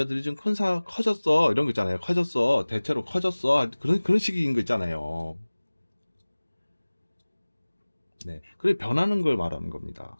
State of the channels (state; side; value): inverted; both; correlation -1.00